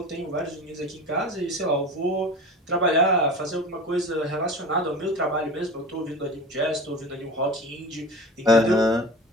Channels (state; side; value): normal; both; correlation 0.34